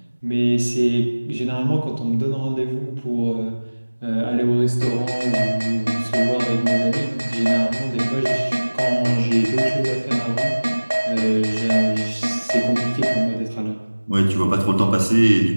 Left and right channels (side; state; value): both; inverted; correlation -1.00